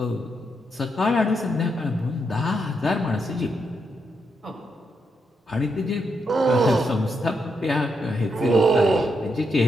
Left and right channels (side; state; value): both; normal; correlation 0.81